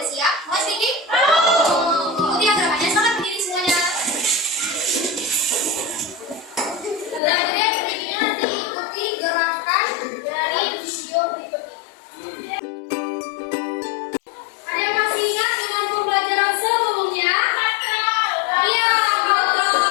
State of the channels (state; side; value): drops out; right; at 7.2 s